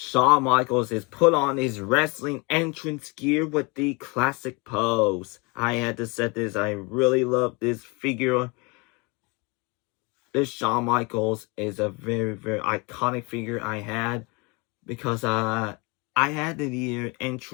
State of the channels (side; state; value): right; quieter; 28.9 dB